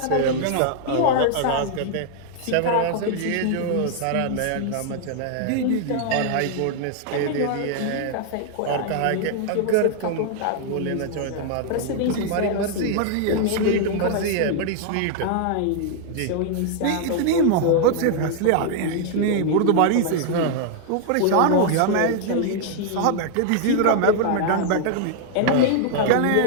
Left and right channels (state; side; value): different; both; correlation 0.00